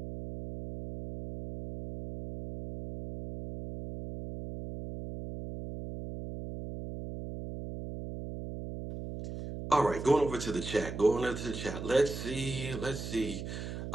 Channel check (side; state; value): right; noise; hum, 8 dB below the sound